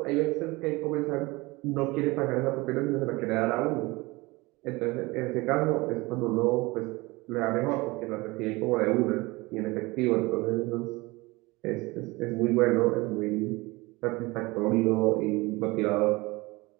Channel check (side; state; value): left; quieter; 23.0 dB